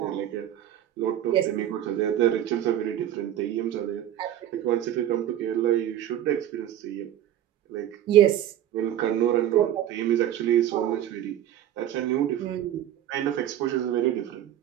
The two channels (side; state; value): left; quieter; 11.6 dB